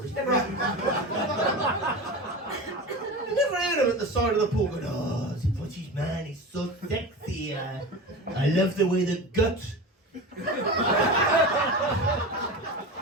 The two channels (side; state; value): both; normal; correlation 0.28